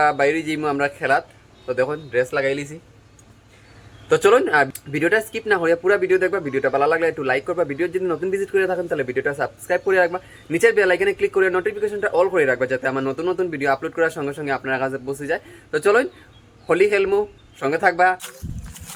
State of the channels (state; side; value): identical; both; correlation 1.00